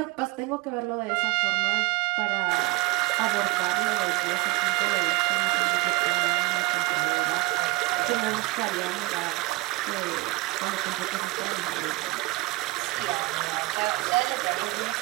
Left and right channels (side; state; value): left; quieter; 22.9 dB